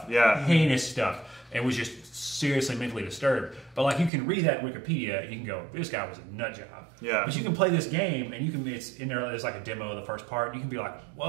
Yeah. Heinous stuff. And was just seriously mentally disturbed. But like you can read that in Wikipedia and you can go, this guy was a nut job. Yeah. But you can play this game and you can it's in there. There's like a demo of the first part. And you can be like,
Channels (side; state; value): left; drops out; at 4.1 s